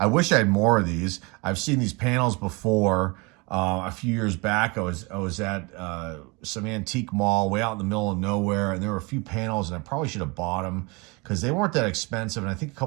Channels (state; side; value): quieter; left; 27.9 dB